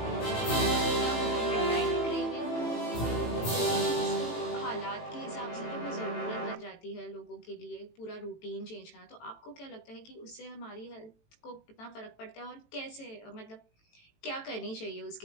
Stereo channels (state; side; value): late; right; 18 ms